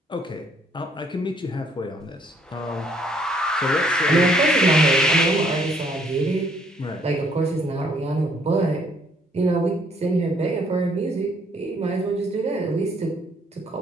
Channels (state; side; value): normal; both; correlation 0.66